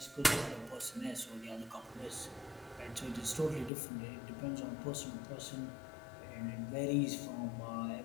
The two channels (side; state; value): right; drops out; at 3.7 s